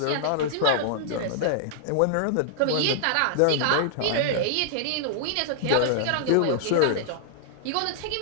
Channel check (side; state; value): both; different; correlation -0.01